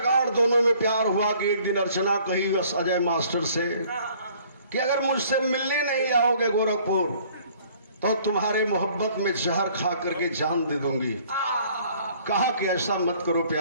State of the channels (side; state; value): both; inverted; correlation -0.57